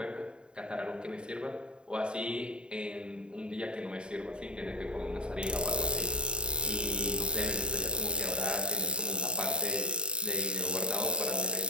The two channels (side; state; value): left; late; 0.052 ms